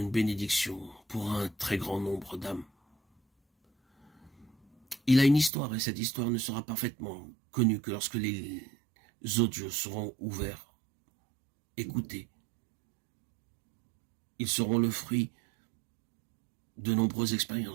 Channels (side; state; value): left; drops out; at 5.5 s